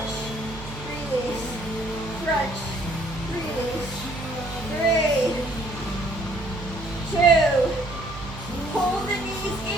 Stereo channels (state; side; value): noise; right; hum, 12 dB below the sound